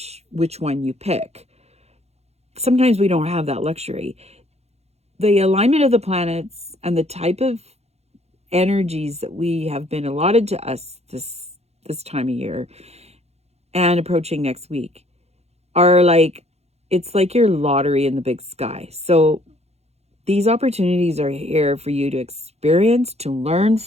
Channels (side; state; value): left; late; 0.31 ms